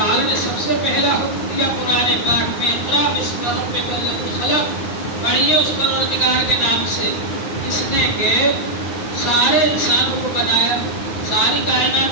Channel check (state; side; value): late; right; 9.7 ms